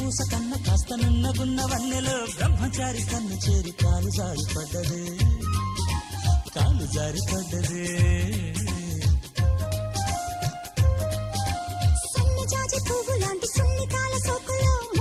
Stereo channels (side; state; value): both; identical; correlation 1.00